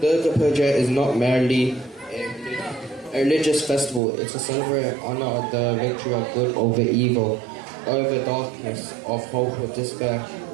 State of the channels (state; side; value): drops out; left; at 4.0 s